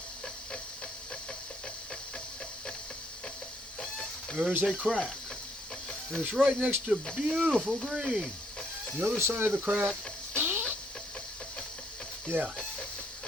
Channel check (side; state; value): both; normal; correlation 0.69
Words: There's a crack. And it's right next to beautiful green. The other side of the crack, yeah.